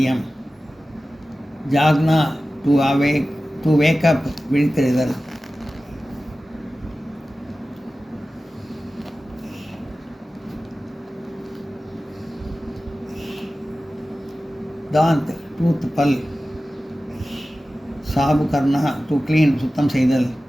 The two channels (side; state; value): both; normal; correlation 0.95